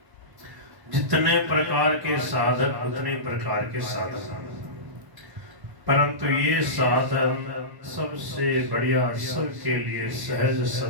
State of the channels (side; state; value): left; late; 1.1 ms